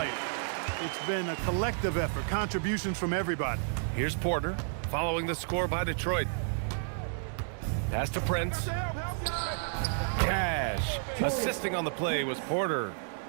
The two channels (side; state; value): left; silent; digital silence